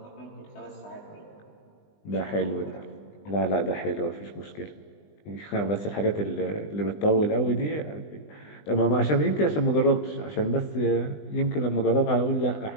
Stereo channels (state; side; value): late; right; 20 ms